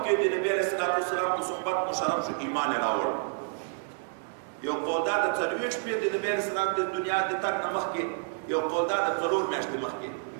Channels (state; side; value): silent; left; digital silence